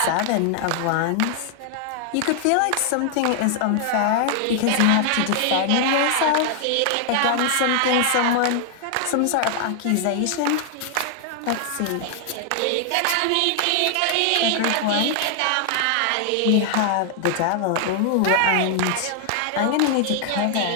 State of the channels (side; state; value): both; different; correlation 0.00